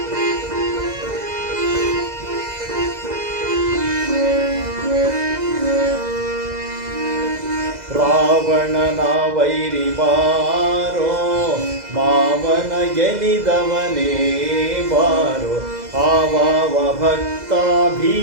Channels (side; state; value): left; late; 2.0 ms